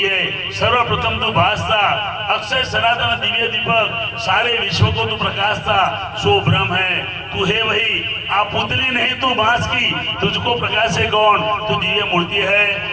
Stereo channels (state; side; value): identical; both; correlation 1.00